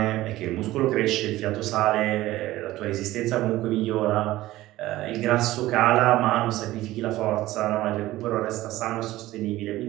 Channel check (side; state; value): left; quieter; 16.5 dB